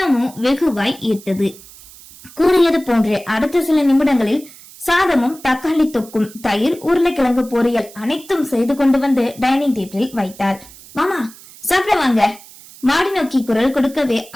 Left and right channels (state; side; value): noise; right; hiss, 20 dB below the sound